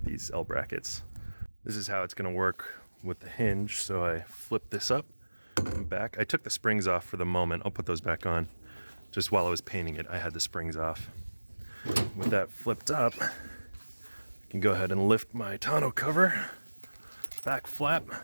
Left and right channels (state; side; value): inverted; both; correlation -1.00